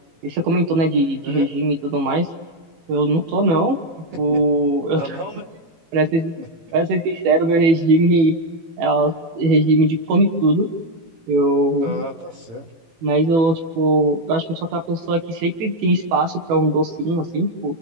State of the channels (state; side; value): late; left; 18 ms